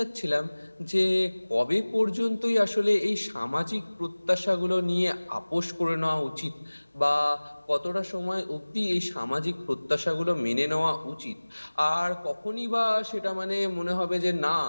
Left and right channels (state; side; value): inverted; both; correlation -1.00